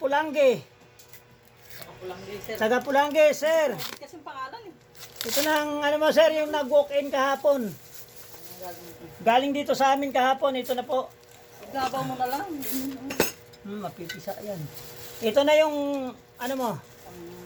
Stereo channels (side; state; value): both; identical; correlation 1.00